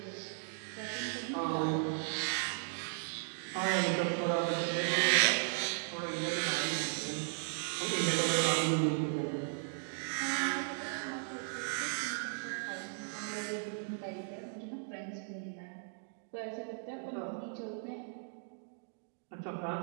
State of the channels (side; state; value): left; silent; digital silence